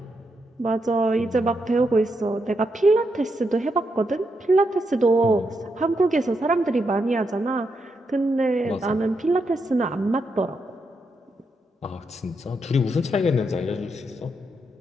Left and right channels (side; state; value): both; normal; correlation 0.82